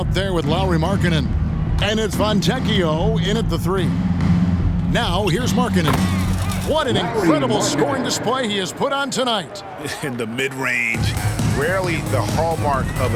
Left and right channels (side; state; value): both; identical; correlation 1.00